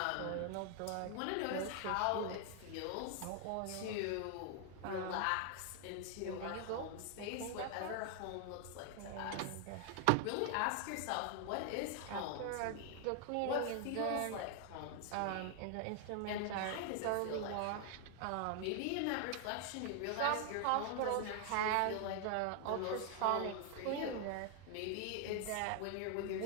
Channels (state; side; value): different; both; correlation 0.00